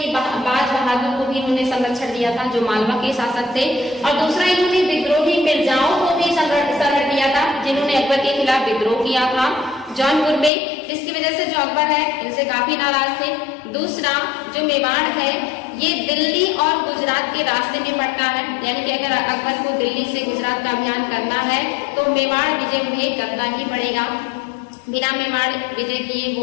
बाज बहादुर को भी इन्होंने संरक्षण दिया था जो मालवा के शासक थे, और दूसरा इन्होंने विद्रोही मिर्जाओं को भी संरक्षण दिया था जिन्होंने अकबर के खिलाफ विद्रोह किया था जौनपुर में, जिसकी वजह से जो अकबर है इनसे काफी नाराज थे। दूसरा जो मेवाड़ है ये दिल्ली और गुजरात के रास्ते में पड़ता है, यानी कि अगर अकबर को दिल्ली से गुजरात का अभियान करना है तो मेवाड़ विजय उन्हें करना ही पड़ेगा। बिना मेवाड़ विजय किए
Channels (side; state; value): right; drops out; at 10.5 s